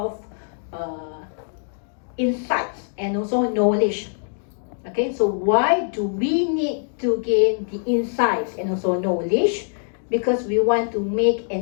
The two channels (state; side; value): silent; right; 63 dB below the other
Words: insights and also knowledge. Okay, so why do we need to gain the insights and also knowledge? Because we want to make